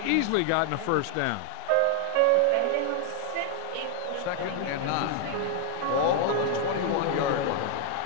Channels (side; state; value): both; different; correlation 0.00